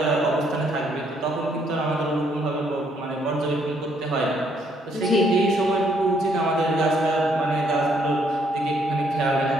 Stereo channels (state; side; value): normal; both; correlation 0.69